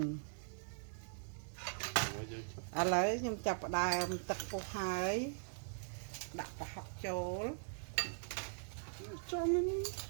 ឥឡូវខ្ញុំចាប់ផ្ដើមទឹកពុះហើយដាក់ប្រហុកចូល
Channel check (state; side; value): silent; left; 50 dB below the other